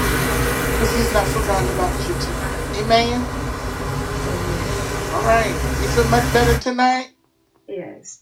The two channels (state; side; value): identical; both; correlation 1.00